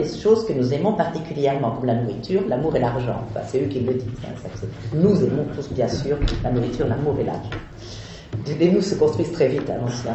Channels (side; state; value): both; identical; correlation 1.00